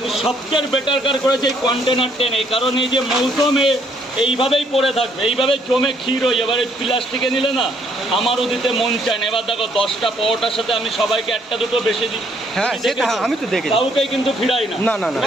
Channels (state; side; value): normal; both; correlation 0.67